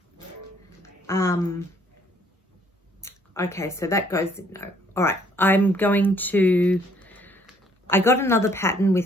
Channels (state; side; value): normal; both; correlation 0.64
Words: Okay, so that goes, no. All right, I got another pattern